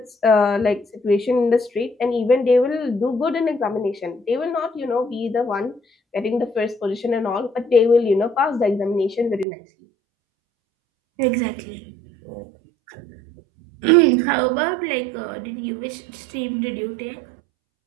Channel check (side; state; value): left; drops out; at 9.5 s